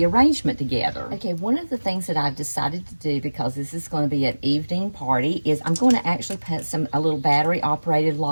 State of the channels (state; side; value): inverted; both; correlation -1.00